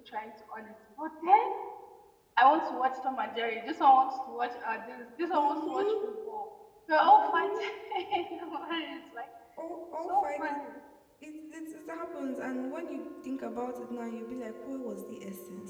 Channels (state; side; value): identical; both; correlation 1.00